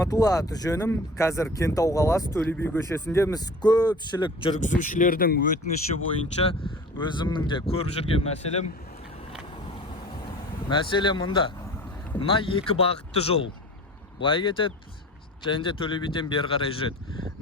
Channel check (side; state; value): both; normal; correlation 0.39